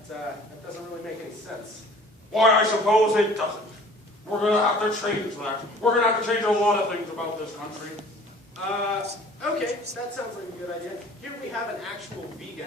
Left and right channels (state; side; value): normal; both; correlation 0.49